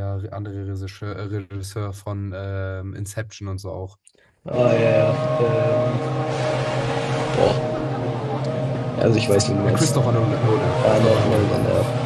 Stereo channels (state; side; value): identical; both; correlation 1.00